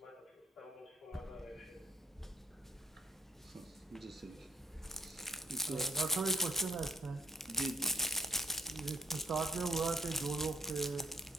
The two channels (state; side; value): normal; both; correlation 0.69